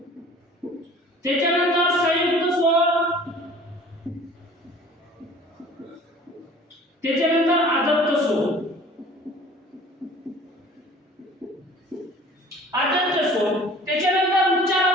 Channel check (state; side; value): normal; both; correlation 0.48